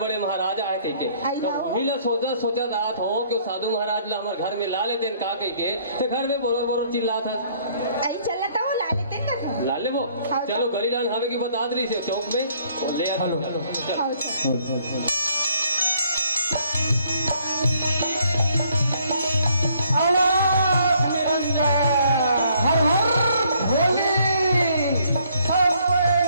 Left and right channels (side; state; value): both; inverted; correlation -0.65